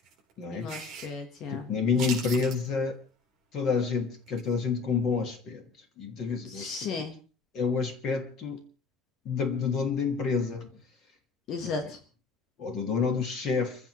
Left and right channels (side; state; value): right; quieter; 4.8 dB